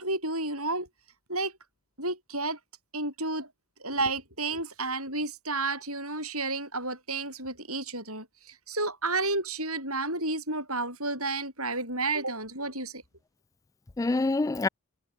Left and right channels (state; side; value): normal; both; correlation -0.08